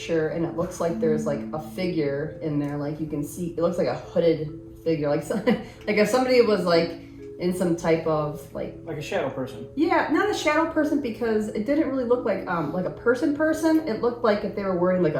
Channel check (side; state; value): both; identical; correlation 1.00